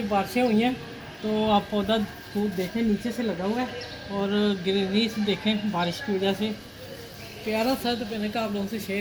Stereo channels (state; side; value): identical; both; correlation 1.00